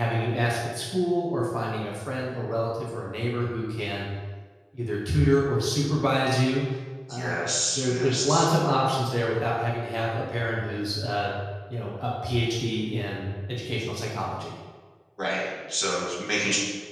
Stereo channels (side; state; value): both; identical; correlation 1.00